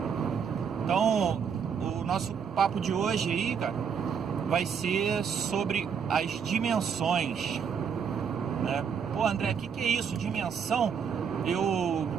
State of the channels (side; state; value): left; quieter; 6.9 dB